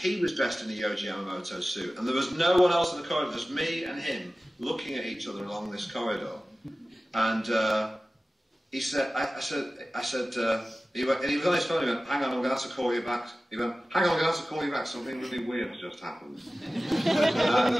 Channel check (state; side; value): normal; both; correlation 0.96